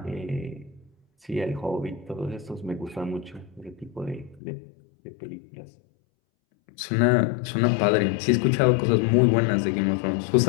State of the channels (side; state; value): right; drops out; at 4.4 s